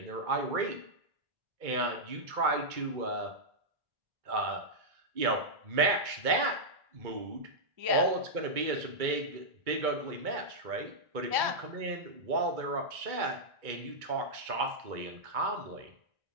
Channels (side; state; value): left; late; 2.2 ms